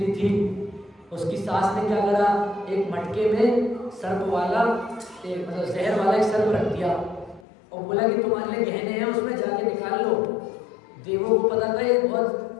थी। उसकी सास ने क्या करा, एक मटके में सर्प वाला एक मतलब जहर वाला एक सर्प रख दिया और बोला कि तुम्हारे लिए गहने हैं, उसमें जाके निकाल लो। देवों को पता था ये बहुत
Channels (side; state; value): right; drops out; at 7.5 s